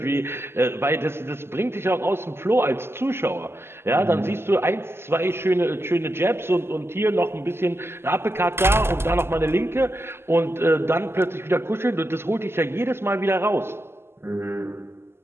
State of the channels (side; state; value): left; late; 0.12 ms